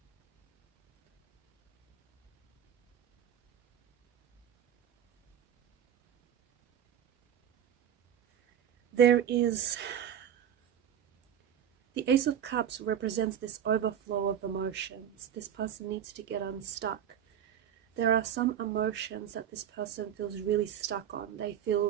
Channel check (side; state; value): left; quieter; 9.4 dB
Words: There is the Ace of Cups represents this overflow of emotions. This person needs to get unstuck. There are some emotions that this person feels really stuck on. They